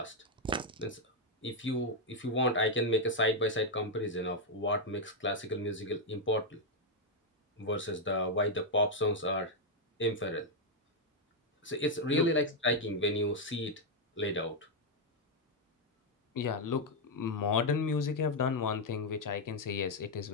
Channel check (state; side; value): normal; both; correlation 0.00